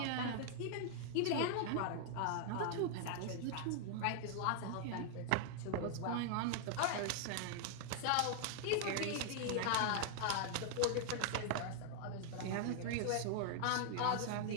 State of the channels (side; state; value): both; different; correlation 0.00